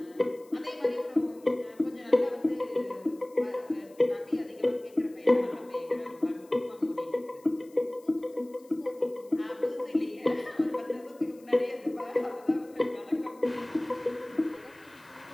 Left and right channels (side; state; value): left; noise; hiss, 28 dB below the sound